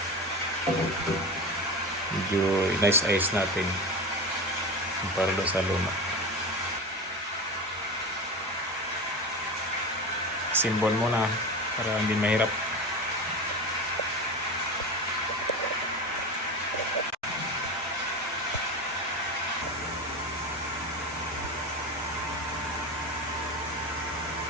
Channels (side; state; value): both; normal; correlation 0.25